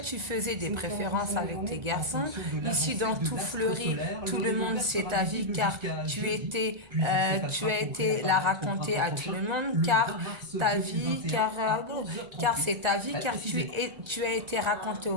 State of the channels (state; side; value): late; left; 1.9 ms